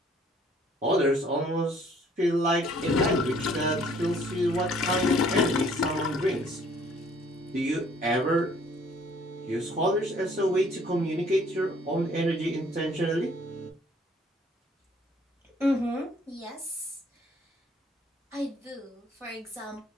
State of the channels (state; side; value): normal; both; correlation 0.59